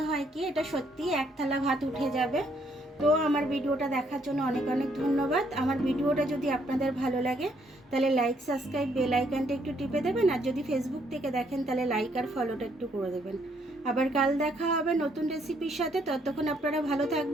হয় কি এটা সত্যি এক থালা ভাত উঠে যাবে। তো আমার ভিডিওটা দেখার জন্য অনেক অনেক ধন্যবাদ। আমার ভিডিওটা যদি আপনাদের ভালো লাগে তাহলে লাইক, সাবস্ক্রাইব, বেল আইকনটা একটু টিপে দেবেন। আর যদি ফেসবুক থেকে দেখেন তাহলে লাইক আর ফলোটা একটু করে দেবেন। আবার কাল দেখা হবে নতুন রেসিপির সাথে। ততক্ষণ আপনারা ভালো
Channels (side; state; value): both; normal; correlation 0.70